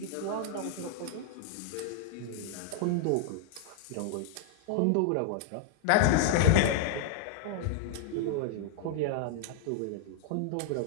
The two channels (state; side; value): different; both; correlation -0.01